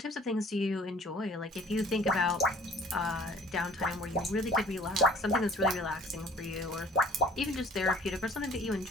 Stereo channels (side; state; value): both; normal; correlation 0.52